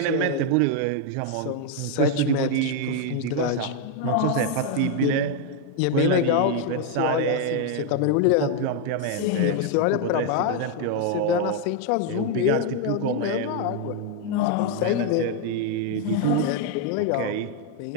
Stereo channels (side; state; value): both; different; correlation 0.01